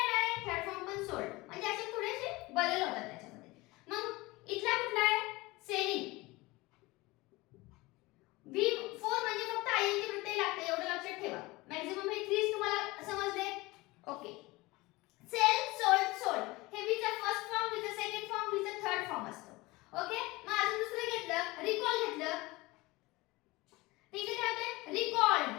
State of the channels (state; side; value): quieter; right; 21.7 dB